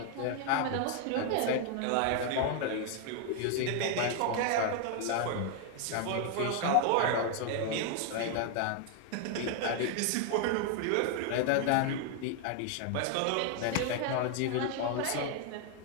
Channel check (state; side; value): different; both; correlation 0.00